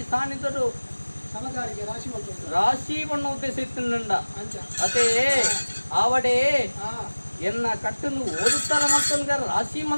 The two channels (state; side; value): inverted; both; correlation -1.00